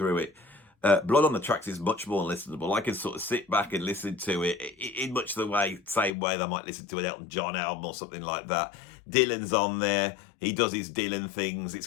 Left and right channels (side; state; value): right; drops out; at 6.1 s